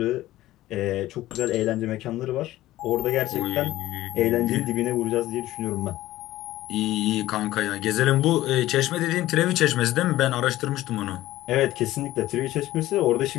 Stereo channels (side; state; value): right; quieter; 15.7 dB